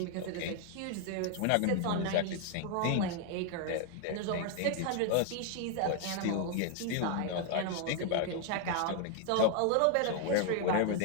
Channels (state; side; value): different; both; correlation 0.00